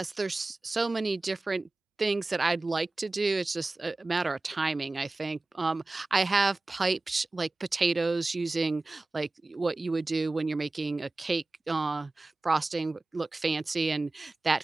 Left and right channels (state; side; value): quieter; left; 3.1 dB